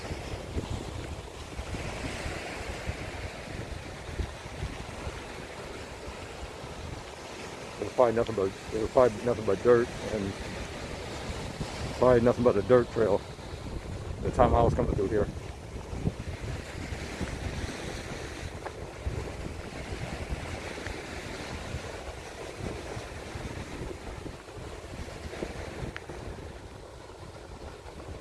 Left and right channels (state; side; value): identical; both; correlation 1.00